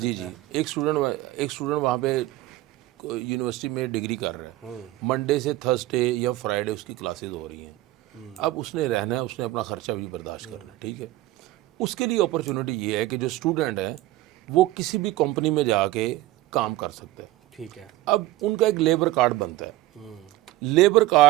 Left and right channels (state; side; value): quieter; left; 16.4 dB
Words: ہے. جی ایک اسٹوڈنٹ وہاں پہ یونیورسٹی میں ڈگری کر رہے ہیں, منڈے سے تھرسڈے یا فرائیڈے اس کی کلاسز ہو رہی ہیں. اب اس نے رہنا ہے, اس نے اپنا خرچہ بھی برداشت کرنا ہے, ٹھیک ہے. اس کے لیے اپرچونٹی یہ ہے کہ جو اسٹوڈنٹ ہے وہ کسی بھی کمپنی میں جا کے کام کر سکتا ہے, ٹھیک ہے. اب ان کا ایک لیبر کارڈ بنتا ہے. لیبر